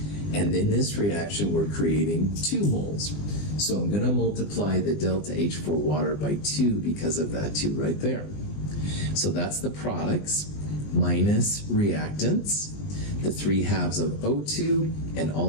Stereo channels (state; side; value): late; right; 20 ms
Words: and in this reaction we're creating 2 moles. So I'm going to multiply the delta H for water by 2 because of that 2 right there. So that's the products minus reactants, the 3/2 of O2, and